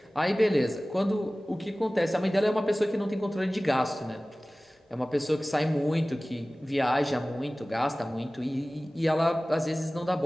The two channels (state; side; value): normal; both; correlation 0.98